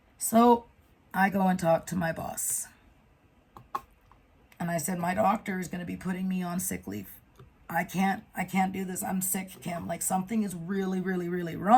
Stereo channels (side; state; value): both; identical; correlation 1.00